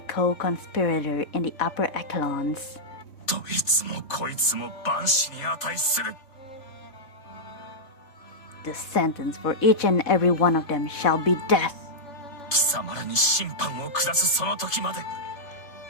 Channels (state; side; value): late; right; 3.6 ms